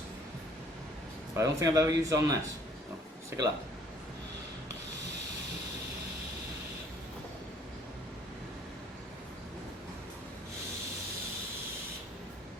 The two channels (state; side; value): normal; both; correlation 0.58